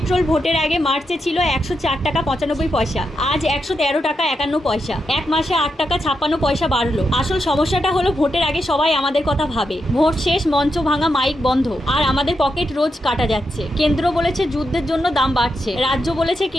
ভোটের আগে মার্চে ছিল 104 টাকা 95 পয়সা, আজ 113 টাকা 51 পয়সা। এক মাসে 8 টাকা 56 পয়সা বাড়লো। আসল সমস্যাটা হলো ভোটের আগে সবাই আমাদের কথা ভাবে, ভোট শেষ মঞ্চ ভাঙা, মাইক বন্ধ, আর আমাদের পকেট রোজ কাটা যাচ্ছে। কেন্দ্র বলেছে যুদ্ধের জন্য দাম বাড়ছে, রাজ্য বলেছে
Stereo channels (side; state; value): both; normal; correlation 0.85